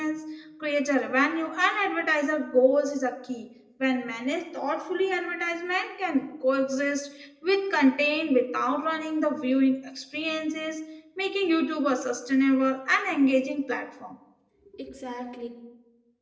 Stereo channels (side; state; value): both; identical; correlation 1.00